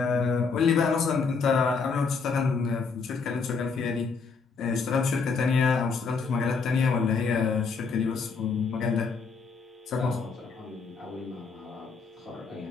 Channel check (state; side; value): quieter; right; 5.0 dB